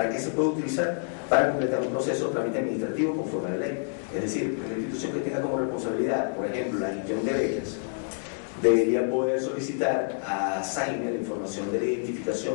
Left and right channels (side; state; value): right; silent; digital silence